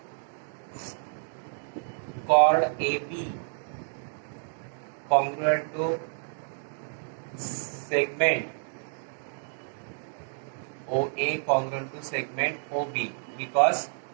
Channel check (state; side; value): silent; left; digital silence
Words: chord AB congruent to segment OA congruent to segment OB, because